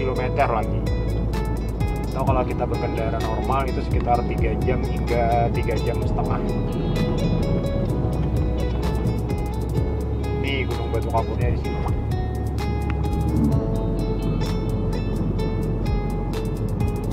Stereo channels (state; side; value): identical; both; correlation 1.00